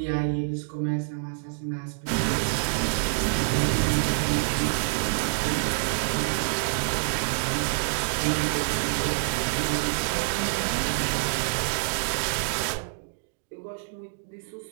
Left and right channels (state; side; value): silent; left; digital silence